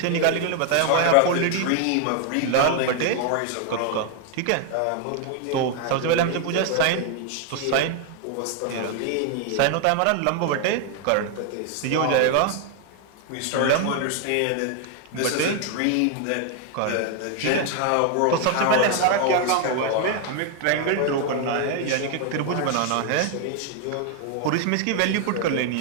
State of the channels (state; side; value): different; both; correlation 0.00